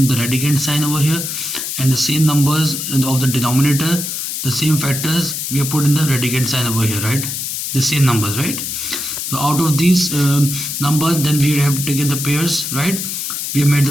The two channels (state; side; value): noise; left; hiss, 4 dB below the sound